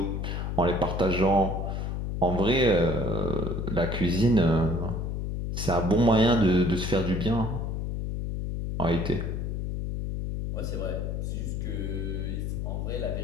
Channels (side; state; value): left; noise; hum, 2 dB below the sound